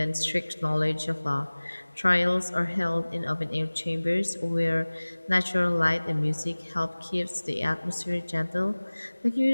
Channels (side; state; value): both; inverted; correlation -1.00